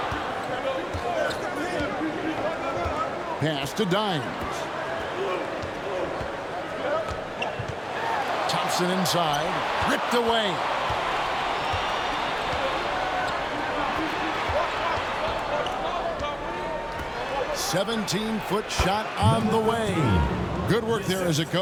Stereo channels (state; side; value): identical; both; correlation 1.00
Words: Pass to Dimes. Thompson inside. Ripped away. "17-foot shot on the way." Good work there as it